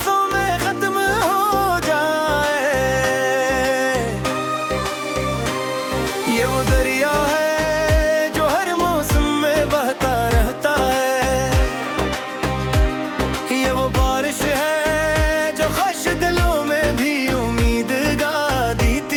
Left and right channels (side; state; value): both; identical; correlation 1.00